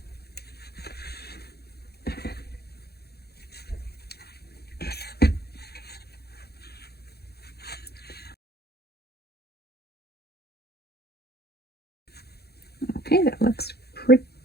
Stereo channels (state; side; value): late; right; 0.46 ms